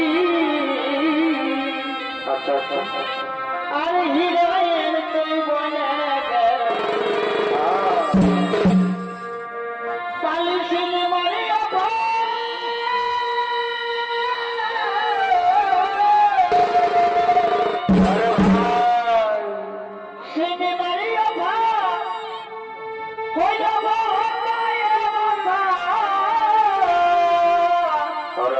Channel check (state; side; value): identical; both; correlation 1.00